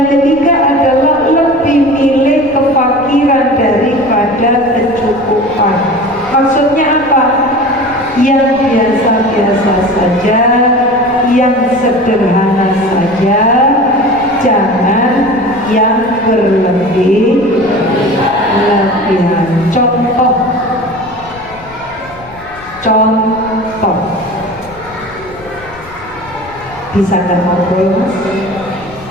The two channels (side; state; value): left; noise; rumble, 22 dB below the sound